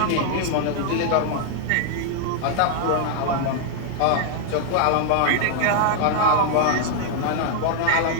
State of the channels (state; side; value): different; both; correlation 0.00